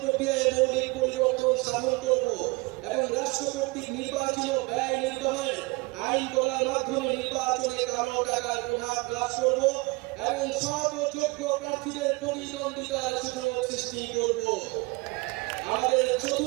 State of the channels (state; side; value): quieter; left; 25.6 dB